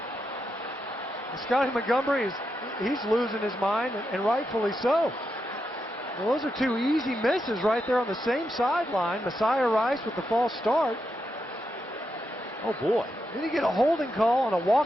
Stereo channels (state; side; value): normal; both; correlation 0.85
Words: Scotty Montgomery, he's losing his mind, and rightfully so. Well, those are 2 easy misses right there on the same sideline. Messiah Rice with the false start. Oh, boy. Then you get a holding call on a